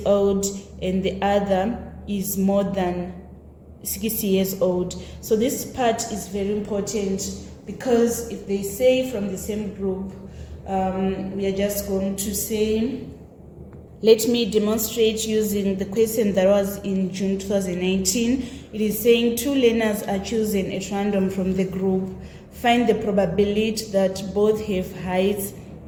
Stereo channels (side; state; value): both; identical; correlation 1.00